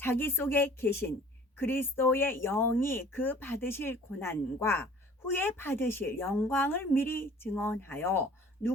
속에 계신 그리스도의 영이 그 받으실 고난과 후에 받으실 영광을 미리 증언하여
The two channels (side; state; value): both; normal; correlation 0.50